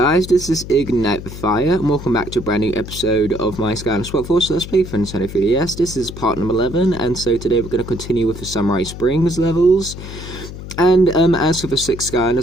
this is Ignite the Fire, and welcome back to a brand new episode of my Skylanders Workforce Let's Play for Nintendo 3DS. This is part number 11, and so today we're going to continue with the Samurai Springs levels. And as for the 6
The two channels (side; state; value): left; noise; hum, 11 dB below the sound